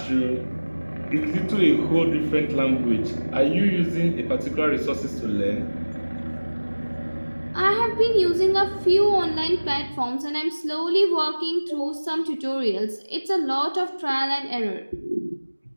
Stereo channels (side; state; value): both; inverted; correlation -1.00